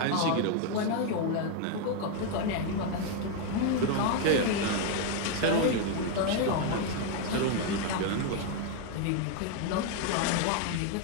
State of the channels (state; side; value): different; both; correlation 0.01